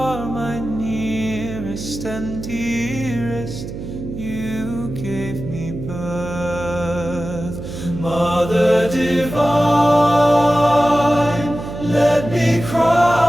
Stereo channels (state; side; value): noise; right; hum, 9 dB below the sound